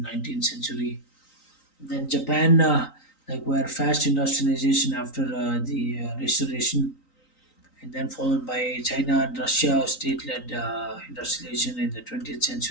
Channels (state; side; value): late; right; 3.9 ms